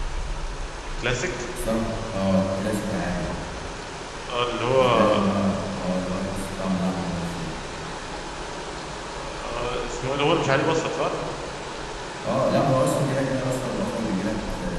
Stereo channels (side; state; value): both; identical; correlation 1.00